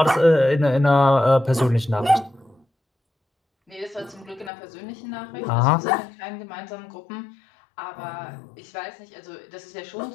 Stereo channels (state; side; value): drops out; right; at 4.5 s